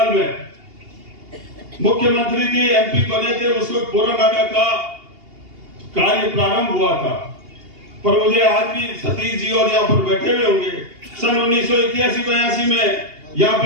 में, मुख्यमंत्री जी एमपी बने थे, उस वक्त पोरानाडा का कार्य प्रारंभ हुआ था, पर मुझे आज भी सतीश जी और यहाँ पर बैठे हुए होंगे, सन 1981-82 में यहाँ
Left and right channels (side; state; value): left; late; 2.8 ms